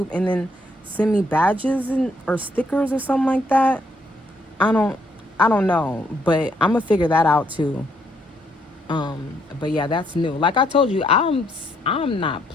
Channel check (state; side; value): normal; both; correlation 0.72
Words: and then send me badges or stickers or something like that. I don't know, but I'm gonna figure that out too. But yeah, that's new. Like I told you, I'm not